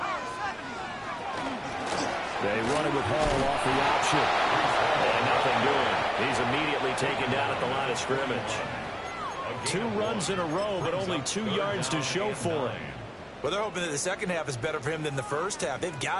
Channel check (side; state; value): both; identical; correlation 1.00